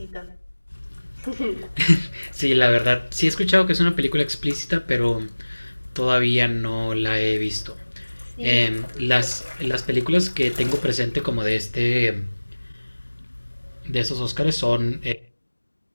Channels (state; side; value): inverted; both; correlation -1.00